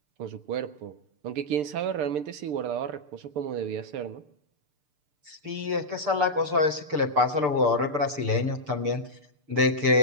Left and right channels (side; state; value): left; late; 6.7 ms